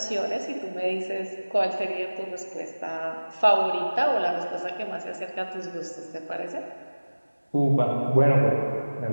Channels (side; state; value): both; inverted; correlation -1.00